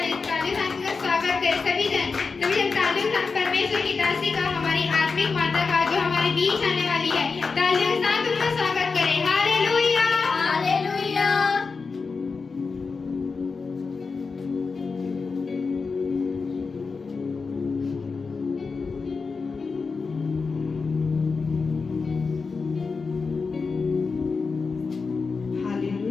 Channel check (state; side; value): quieter; right; 4.7 dB